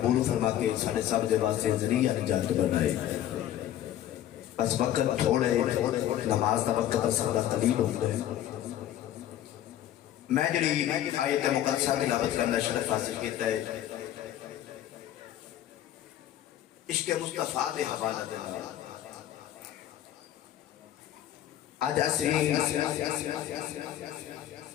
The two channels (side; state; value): right; quieter; 12.0 dB